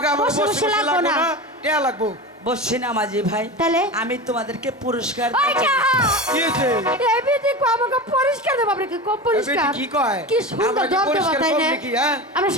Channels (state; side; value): normal; both; correlation 0.27